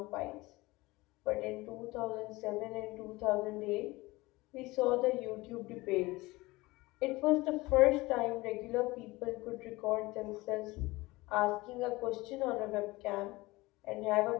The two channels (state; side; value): quieter; right; 21.0 dB